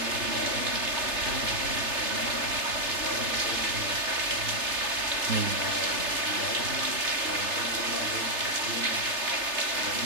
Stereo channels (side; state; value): left; late; 3.3 ms